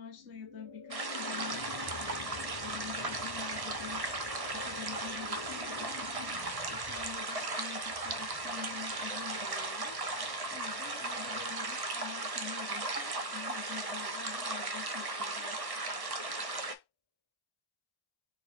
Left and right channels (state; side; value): late; left; 1.1 ms